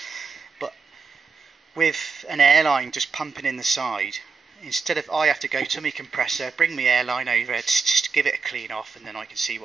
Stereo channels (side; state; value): left; quieter; 5.1 dB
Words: but with an airline just pumping in the side, instead of I have to go to my compressor, bring my airline over, just give it a clean off, and then I can see